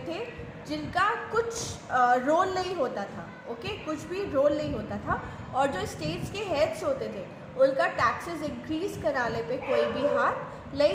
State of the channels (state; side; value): identical; both; correlation 1.00